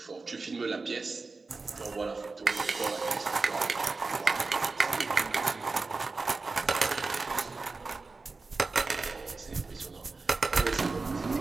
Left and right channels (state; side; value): quieter; left; 3.9 dB